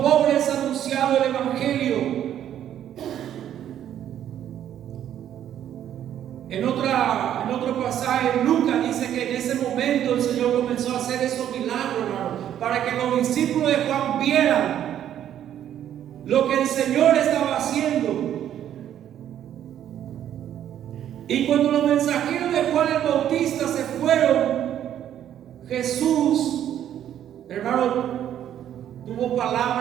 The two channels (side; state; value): left; quieter; 10.6 dB